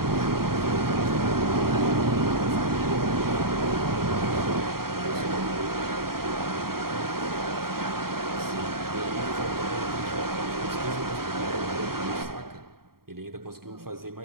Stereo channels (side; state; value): left; late; 0.93 ms